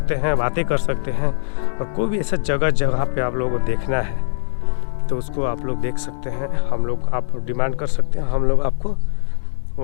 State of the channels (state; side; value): silent; right; digital silence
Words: हैं, बातें कर सकते हैं। और कोई भी ऐसा जगह पे आप लोगों को देखना है तो उसको आप लोग देख सकते हैं। हम लोग, आप डिमांड कर सकते हैं, हम लोग आपको